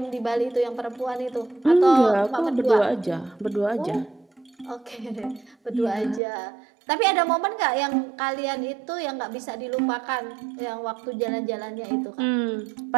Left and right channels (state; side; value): drops out; left; at 6.2 s